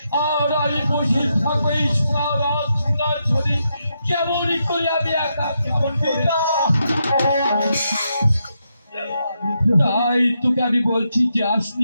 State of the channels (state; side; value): inverted; both; correlation -0.82